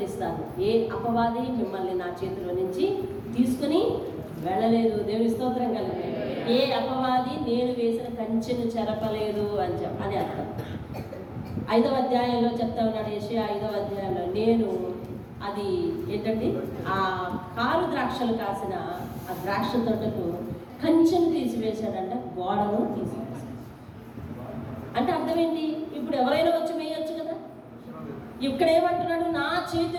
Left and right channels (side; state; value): both; identical; correlation 1.00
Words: ఇస్తాను. ఏ అపవాది మిమ్మల్ని నా చేతిలో నుంచి తీసుకుని వెళ్ళలేదు. దేవుని స్తోత్రం కలిగి. ఏ అపవాది నేను వేసిన కంచెను చెరపలేదు అని అర్థం. 5వ అధ్యాయంలో చెప్తా ఉన్నాడు యెషయా 5వ అధ్యాయంలో, నేను అది ఏంటండి ఆ కారు ద్రాక్షలు కాసిన ఆ ద్రాక్ష తోటకు కంచెను తీసివేశాడంట, గోడను తీసివేశాడు. అంటే అర్థం ఏంటి? ఇప్పుడు ఎవరైనా వచ్చి వేయొచ్చు కదా. ఇక్కడ ఏమంటున్నాడు? నా